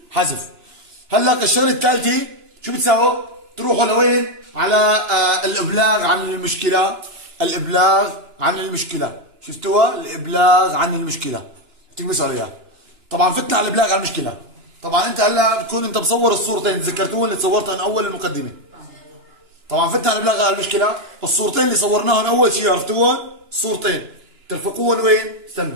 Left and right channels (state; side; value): late; left; 2.9 ms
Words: حذف. هلا الشغله الثالثه شو بتساووا؟ تروحوا لوين؟ على الابلاغ عن المشكله. الابلاغ عن المشكله. شفتوها؟ الابلاغ عن المشكله. تكبسوا عليها. طبعا فتنا على الابلاغ عن المشكله. طبعا انت هلا بتكون انت مصور الصورتين، تذكرتوهم اللي صورتهم اول المقدمه. طبعا فتنا على الابلاغ عن المشكله. الصورتين اللي صورناهم اول شيء عرفتوهم؟ الصورتين ترفقوهم وين؟